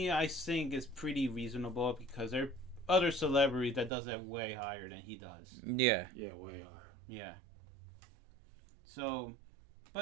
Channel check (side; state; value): left; drops out; at 3.9 s